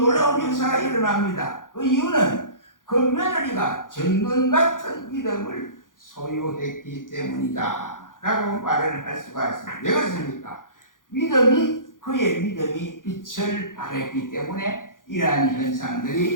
역사가 일어납니다. 그 이유는 그 며느리가 정금 같은 믿음을 소유했기 때문이다 라고 말을 할 수가 있습니다. 왜 그렇습니까? 그의 믿음이 빛을 발했기 때문에 이러한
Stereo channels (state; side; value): late; right; 0.89 ms